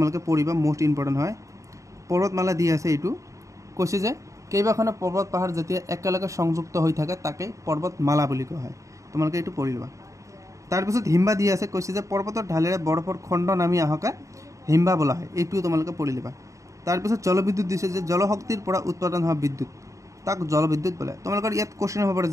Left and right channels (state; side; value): late; left; 0.15 ms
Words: পঢ়িবা, মোষ্ট ইম্পৰ্টেণ্ট হয়। পৰ্বতমালা দি আছে এইটো কৈছে যে কেইবাখনো পৰ্বত পাহাৰ যেতিয়া একেলগে সংযুক্ত হৈ থাকে তাকে পৰ্বতমালা বুলি কোৱা হয়, তোমালোকে এইটো পঢ়ি ল'বা। তাৰপিছত হিম্বা দি আছে, কৈছে যে পৰ্বতৰ ঢালেৰে বৰফৰ খণ্ড নামি অহাকে হিম্বা বোলা হয়, এইটোও তোমালোকে পঢ়ি ল'বা। তাৰপিছত জলবিদ্যুৎ দিছে যে জলশক্তিৰ পৰা উৎপাদন হোৱা বিদ্যুৎ তাক জলবিদ্যুৎ বোলে। তোমালোকৰ ইয়াত কুৱেশ্যন হ'ব পাৰে